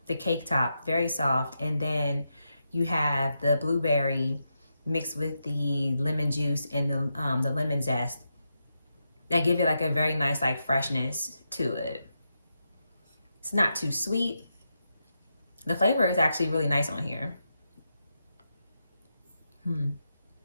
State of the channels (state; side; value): inverted; both; correlation -0.86